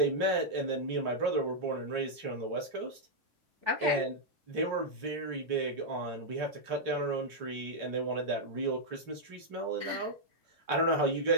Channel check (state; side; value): late; left; 3.4 ms